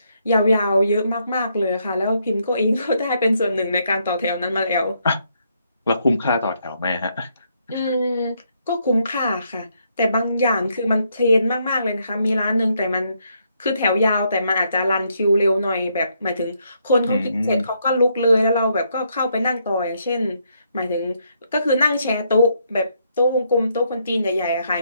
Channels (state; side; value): inverted; both; correlation -0.75